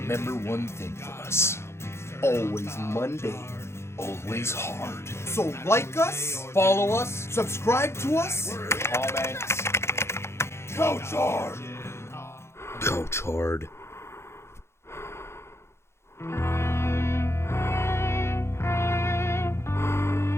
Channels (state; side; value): late; right; 0.13 ms